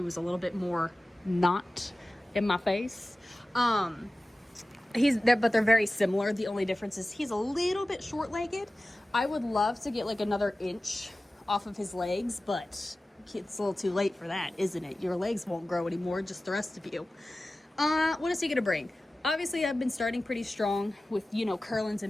was a little bit more not in my face. But they're very similar. The only difference is he's a little bit short-legged. I would love to get like another inch off of his legs, but it's a little too late for that, isn't it? Your legs won't grow anymore, just the rest of you. What is he going to bring? Obviously, I've been starting pretty strong with, you know, Kurlins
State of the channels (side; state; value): both; normal; correlation 0.96